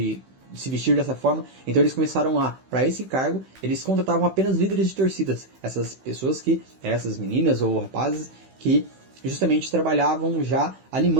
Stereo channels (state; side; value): late; left; 16 ms